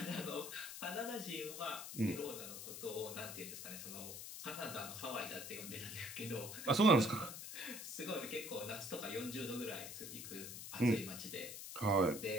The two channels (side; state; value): left; noise; hiss, 8 dB below the sound